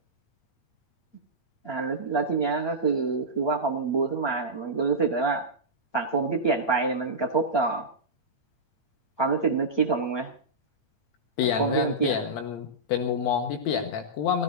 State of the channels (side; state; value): right; late; 8.6 ms